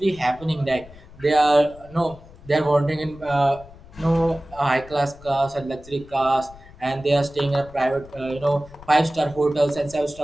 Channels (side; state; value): left; noise; rumble, 21 dB below the sound